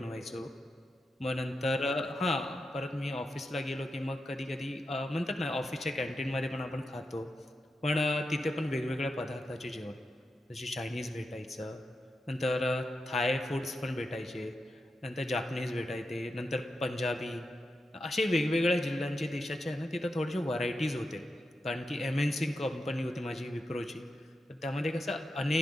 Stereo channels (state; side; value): normal; both; correlation 0.88